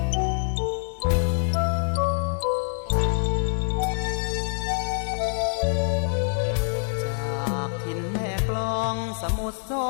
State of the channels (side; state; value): right; silent; digital silence